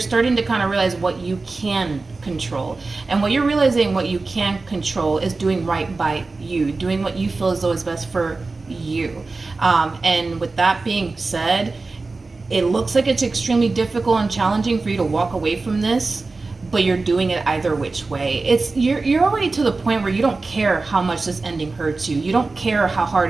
to kind of realize what you can control. And what you're realizing what you can control is doing right by you, doing what you feel as though is best for you. And with that being said, it looks like it's extremely difficult and challenging for you to walk away from this, but you're doing it either which way. It's you're already to the point where you don't care how much this ending hurts you. You don't care how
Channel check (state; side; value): quieter; left; 3.7 dB